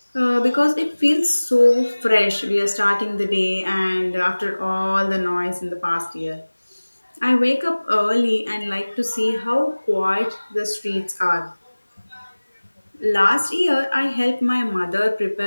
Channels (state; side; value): inverted; both; correlation -1.00